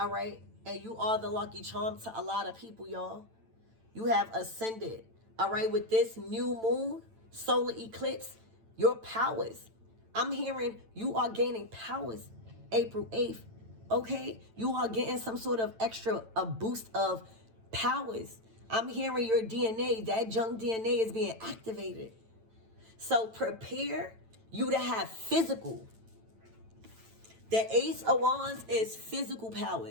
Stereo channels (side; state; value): left; late; 9.0 ms